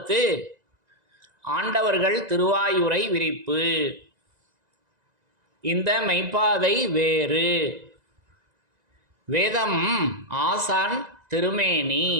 ஆண்டவர்கள் திருவாயுரை விரிப்பு. இந்த மெய்ப்பாதை வேறு. வேதம் ஆசான் திருமேனி.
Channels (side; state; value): left; late; 1.9 ms